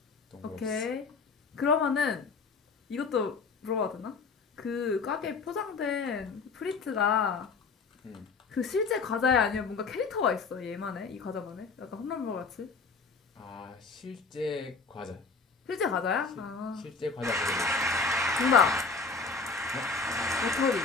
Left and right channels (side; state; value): right; quieter; 4.6 dB